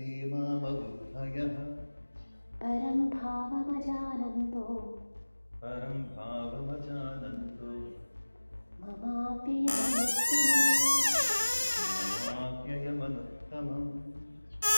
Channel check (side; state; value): both; inverted; correlation -1.00